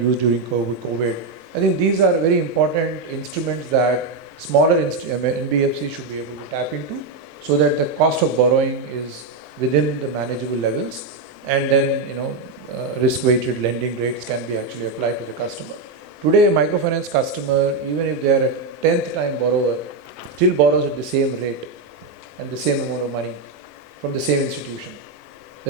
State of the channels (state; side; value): quieter; left; 3.7 dB